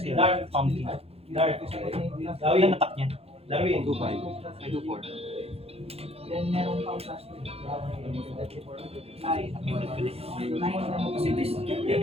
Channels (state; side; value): late; left; 0.29 ms